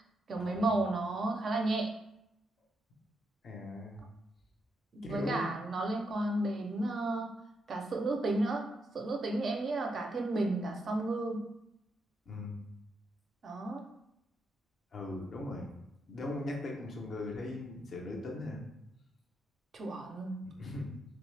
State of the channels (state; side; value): normal; both; correlation 0.81